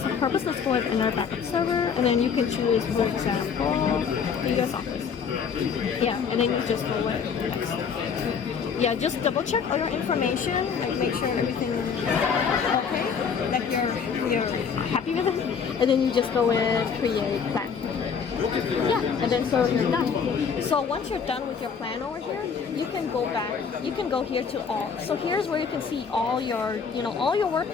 purpose, let's go with another backup server, and then you can choose, for example, the US Office. Yeah, and then you just go with next. Yeah, just double check all your information, like make sure everything is okay, like you're happy with it, and then you just go with create plan. Yeah, and then so you're done. So once you're done with your plan over here, you can go back. You can go here to all. So here's where you can see all your, all your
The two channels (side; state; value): right; quieter; 6.4 dB